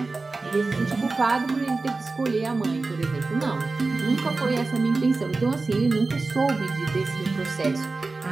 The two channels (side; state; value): left; quieter; 3.7 dB